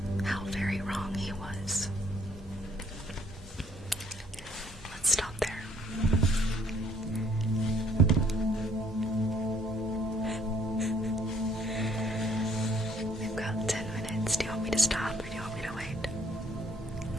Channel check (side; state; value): both; normal; correlation 0.64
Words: How very wrong he was. Let's stop there. We've got 10 minutes. Do you want me to stop or do you want me to wait?